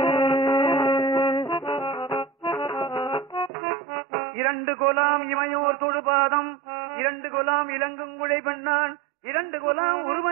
இரண்டு கொலாம் இமையோர் தொழுபாதம், இரண்டு கொலாம் இலங்குங்குழை பெண்ணான், இரண்டு கொலாம்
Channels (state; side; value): drops out; left; at 3.5 s